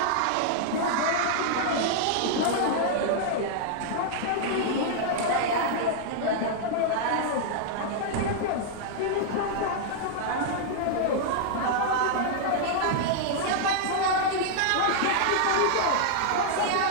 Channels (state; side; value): different; both; correlation -0.01